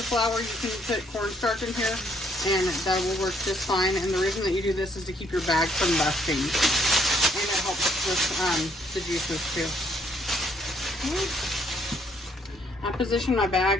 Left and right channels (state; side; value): normal; both; correlation 0.67